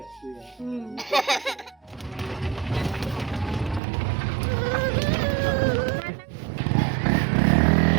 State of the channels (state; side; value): drops out; left; at 3.8 s